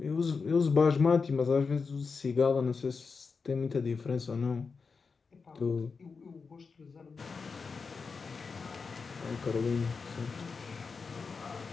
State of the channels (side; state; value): right; quieter; 4.9 dB